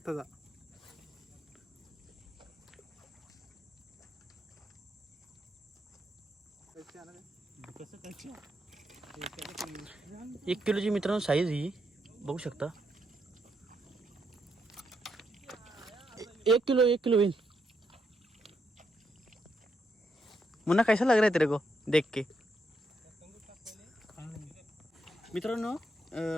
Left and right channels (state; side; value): normal; both; correlation 0.79